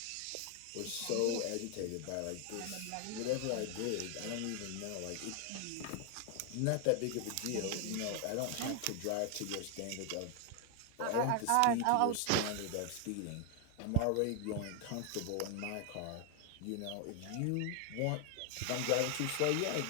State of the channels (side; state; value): both; different; correlation 0.00